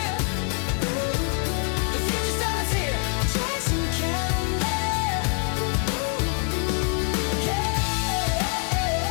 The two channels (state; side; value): quieter; right; 39.8 dB